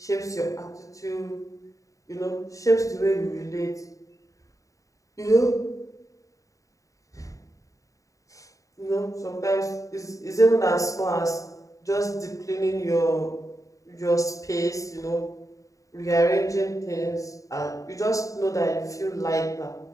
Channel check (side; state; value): right; late; 0.16 ms